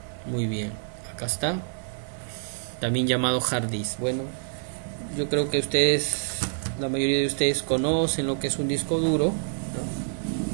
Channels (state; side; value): silent; left; digital silence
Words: Muy bien, acá está, también llamado hard disk. Bueno, yo creo que la mayoría de ustedes conocen lo que es un disco duro,